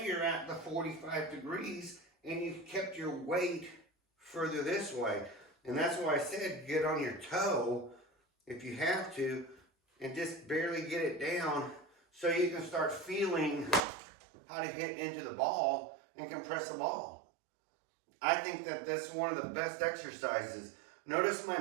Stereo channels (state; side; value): drops out; left; at 13.8 s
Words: at the 45 degrees and you've kept your weight further this way. And that's why I said get on your toe if you have to and just barely get it down so you can start feeling how to hit into the ball and compress the ball. I think that that's one of the best exercises. Notice my